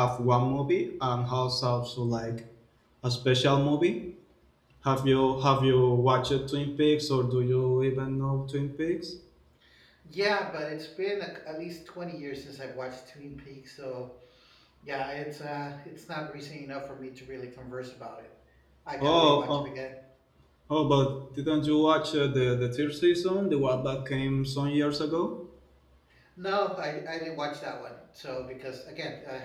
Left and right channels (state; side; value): identical; both; correlation 1.00